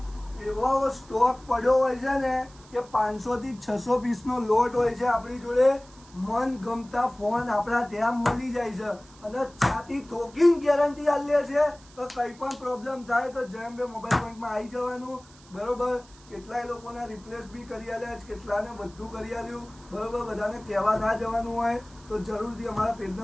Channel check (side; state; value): right; noise; hiss, 25 dB below the sound